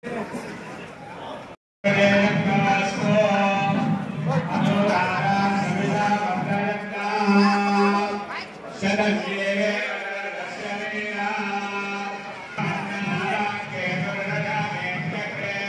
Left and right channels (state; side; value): identical; both; correlation 1.00